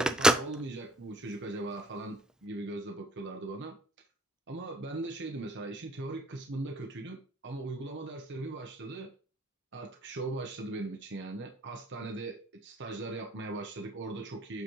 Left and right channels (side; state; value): both; normal; correlation 0.59